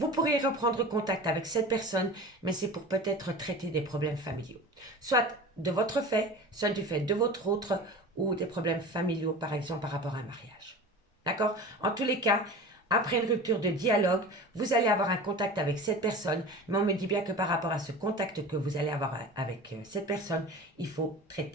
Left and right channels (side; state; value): both; normal; correlation 0.35